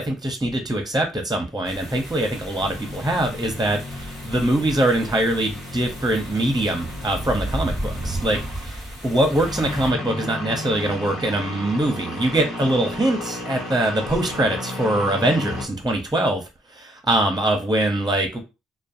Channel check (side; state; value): both; normal; correlation 0.71